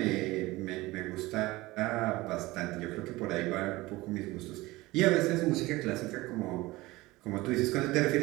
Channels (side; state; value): left; quieter; 20.1 dB